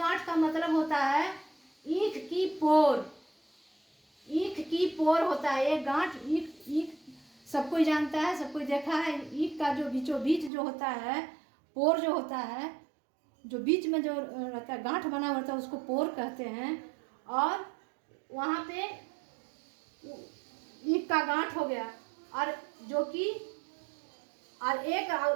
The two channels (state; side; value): drops out; left; at 10.5 s